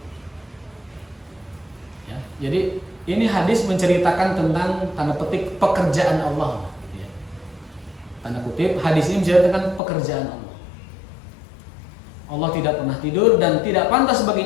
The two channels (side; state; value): right; drops out; at 9.8 s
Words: Ya, jadi ini hadis menceritakan tentang tanda petik pekerjaan Allah. Ya. Tanda kutip, hadis ini menceritakan pekerjaan Allah. Allah tidak pernah tidur dan tidak pantas